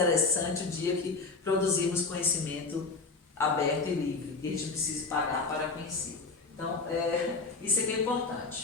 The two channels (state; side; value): quieter; right; 4.1 dB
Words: o dia que produzirmos conhecimento aberto e livre, que a gente precisa pagar para conhecer. Então, isso aqui é